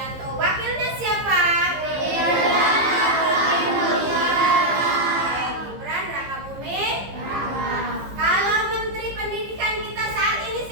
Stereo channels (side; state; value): left; late; 15 ms